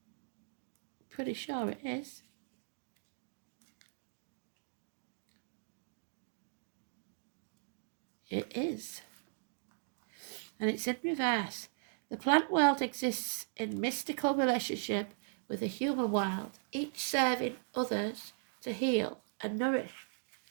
Pretty sure it is. It is. And it's in reverse. The plant world exists in mystical relationship with the human world, each serving others to heal and nourish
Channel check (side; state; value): left; silent; digital silence